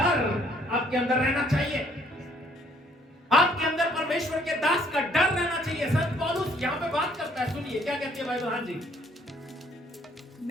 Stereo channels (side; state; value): both; normal; correlation 0.63